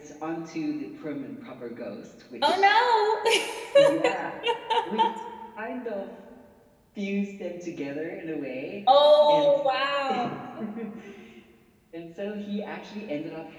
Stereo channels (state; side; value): identical; both; correlation 1.00